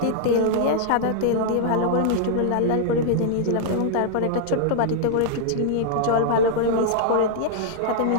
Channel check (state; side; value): different; both; correlation -0.01